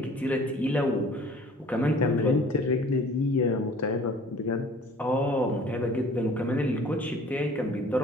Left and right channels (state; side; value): normal; both; correlation 0.50